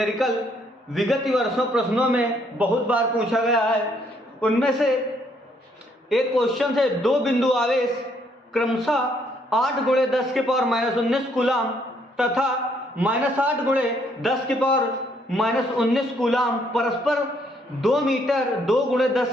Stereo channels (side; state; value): both; normal; correlation 0.69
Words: विगत वर्षों प्रश्नों में बहुत बार पूछा गया है। उनमें से एक क्वेश्चन है, दो बिंदु आवेश क्रमशः 8 × 10⁻⁻19 कूलाम तथा -8 × 10⁻⁻19 कूलाम परस्पर 2 मीटर 2 ×